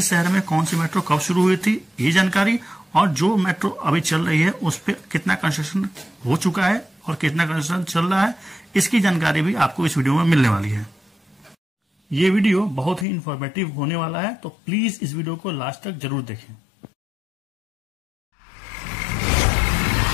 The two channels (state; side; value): drops out; right; at 13.1 s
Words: शहर में कौन सी मेट्रो कब शुरू हुई थी, ये जानकारी, और जो मेट्रो अभी चल रही है उस पर कितना कंस्ट्रक्शन हो चुका है और कितना कंस्ट्रक्शन चल रहा है, इसकी जानकारी भी आपको इस वीडियो में मिलने वाली है। ये वीडियो बहुत ही इंफॉर्मेटिव होने वाला है, तो प्लीज इस वीडियो को लास्ट तक जरूर देखें।